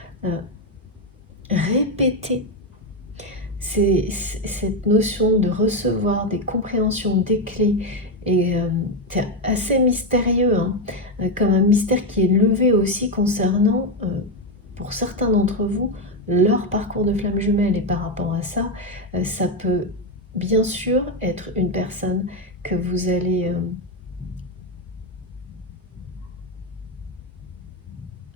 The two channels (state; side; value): normal; both; correlation 0.08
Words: répété. C'est cette notion de recevoir des compréhensions, des clés, et c'est assez mystérieux, hein, comme un mystère qui est levé aussi concernant, pour certains d'entre vous, leur parcours de flamme jumelle. Et par rapport à ça, ça peut bien sûr être une personne que vous allez